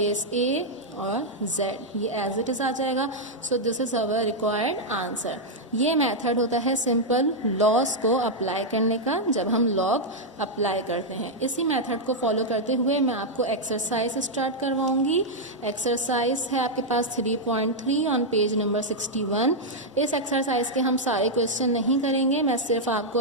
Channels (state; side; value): normal; both; correlation -0.03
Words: a और z, ये एज इट इज आ जाएगा। सो this is our required answer. ये मेथड होता है सिंपल लॉस को अप्लाई करने का, जब हम लॉग अप्लाई करते हैं। इसी मेथड को फॉलो करते हुए मैं आपको एक्सरसाइज स्टार्ट करवाऊंगी। एक्सरसाइज है आपके पास 3.3 ऑन पेज नंबर 61। इस एक्सरसाइज के हम सारे क्वेश्चन नहीं करेंगे, मैं सिर्फ आपको